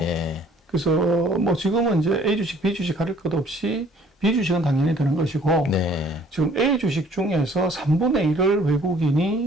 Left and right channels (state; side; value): normal; both; correlation 0.57